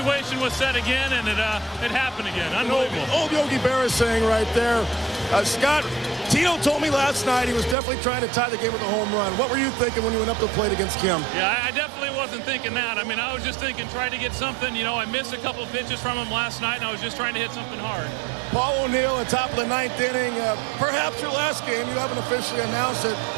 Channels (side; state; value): left; drops out; at 7.8 s